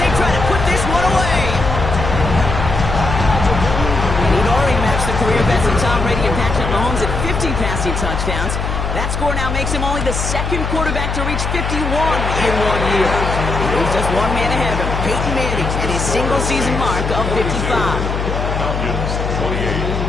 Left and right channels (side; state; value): left; noise; hum, 2 dB below the sound